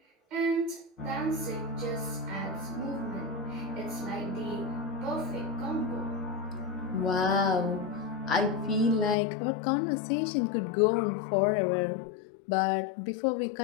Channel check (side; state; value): right; drops out; at 9.2 s